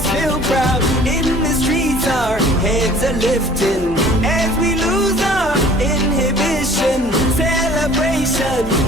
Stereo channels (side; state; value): both; normal; correlation 0.50